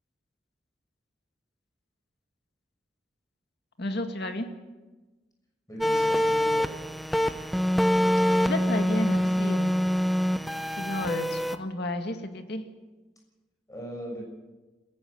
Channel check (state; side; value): normal; both; correlation 0.92